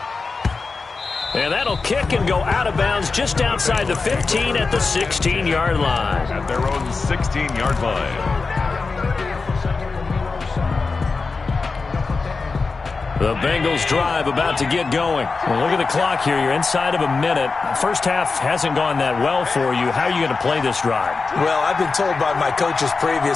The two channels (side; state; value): right; quieter; 4.3 dB